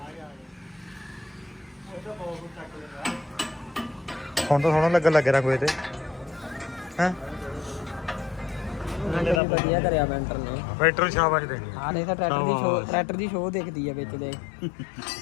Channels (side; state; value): right; drops out; at 9.4 s